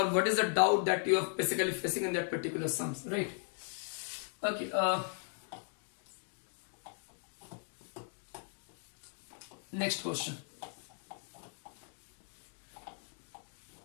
what is the doubt that you are basically facing in that particular sums, right? Okay. Next question.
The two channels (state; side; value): silent; right; 53 dB below the other